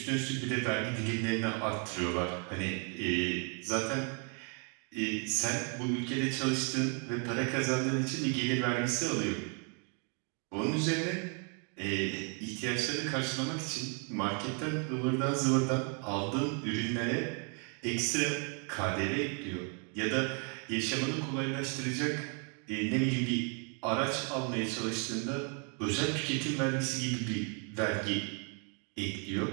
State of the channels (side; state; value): left; quieter; 38.9 dB